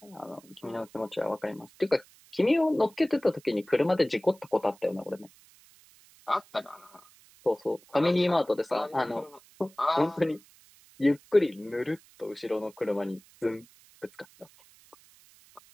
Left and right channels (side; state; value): right; noise; hiss, 27 dB below the sound